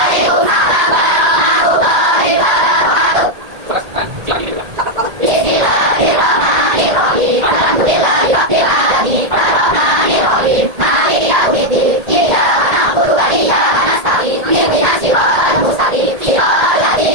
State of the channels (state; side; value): late; left; 1.8 ms